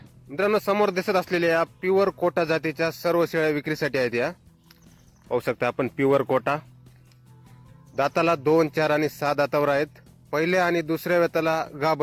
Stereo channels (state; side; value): identical; both; correlation 1.00